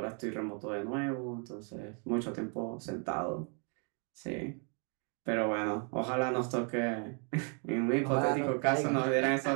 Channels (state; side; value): quieter; left; 39.4 dB